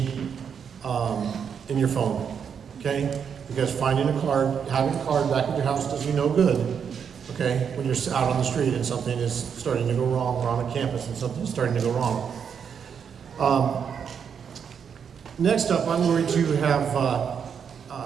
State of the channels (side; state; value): left; quieter; 7.2 dB